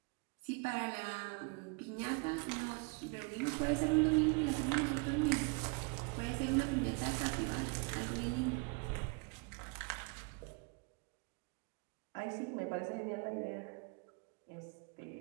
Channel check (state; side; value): quieter; left; 33.1 dB